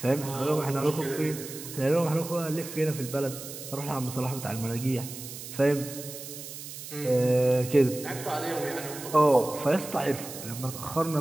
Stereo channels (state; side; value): noise; right; hiss, 11 dB below the sound